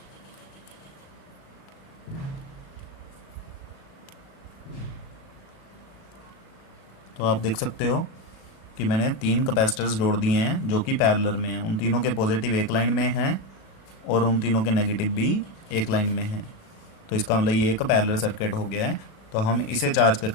तो आप देख सकते हो कि मैंने 3 कैपेसिटर्स जोड़ दिए हैं जो कि पैरेलल में हैं। उन तीनों के पॉजिटिव एक लाइन में हैं और उन तीनों के नेगेटिव भी एक लाइन में हैं। तो इसका मतलब ये एक पैरेलल सर्किट हो गया है। तो हम इसे चार्ज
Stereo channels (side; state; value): right; late; 37 ms